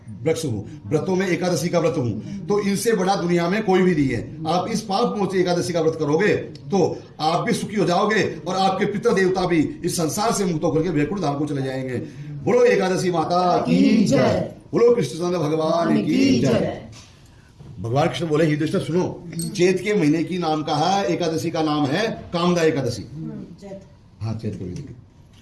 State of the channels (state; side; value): identical; both; correlation 1.00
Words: वृक्ष हूं, व्रतों में एकादशी का व्रत हूं, तो इनसे बड़ा दुनिया में कोई भी नहीं है। आप इस पाप मोचनी एकादशी का व्रत करोगे तो आप भी सुखी हो जाओगे और आपके पितर देवता भी इस संसार से मुक्त होकर के वैकुंठ धाम को चले जाएंगे। बोलो एकादशी माता की जय, बोलो कृष्णचंद्र भगवान की जय। भगवान कृष्ण बोले युधिष्ठिर सुनो, चैत के महीने की नाम का है, एकादशी का नाम है कामदा एकादशी। हाँ, चैत के महीने